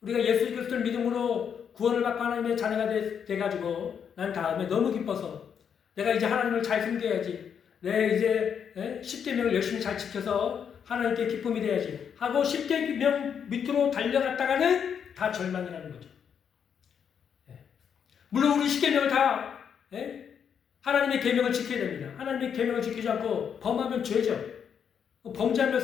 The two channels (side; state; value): right; quieter; 7.6 dB